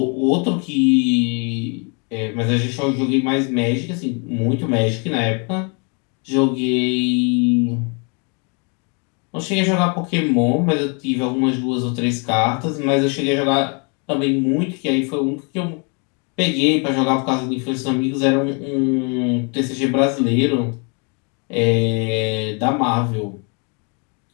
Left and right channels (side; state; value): right; quieter; 35.6 dB